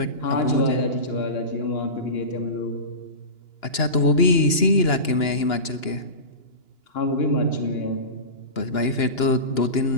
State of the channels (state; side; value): late; right; 2.9 ms